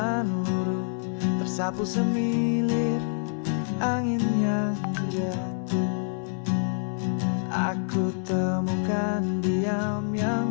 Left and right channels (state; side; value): silent; right; digital silence